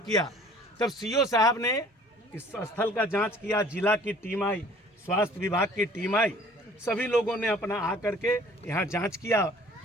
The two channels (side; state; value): both; normal; correlation 0.51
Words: तब सीओ साहब ने इस स्थल का जांच किया, जिला की टीम आई, स्वास्थ्य विभाग की टीम आई, सभी लोगों ने अपना आकर के यहाँ जांच किया।